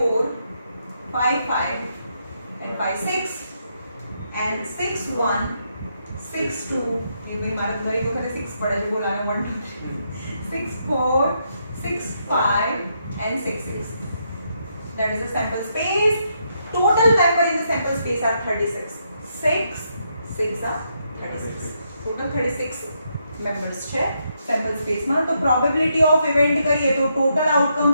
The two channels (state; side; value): inverted; both; correlation -0.78